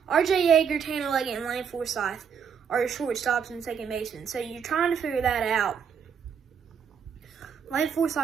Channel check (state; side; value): quieter; left; 7.1 dB